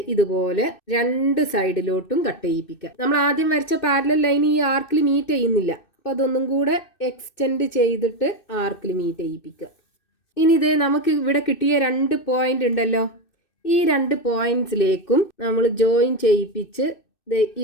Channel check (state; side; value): late; right; 2.6 ms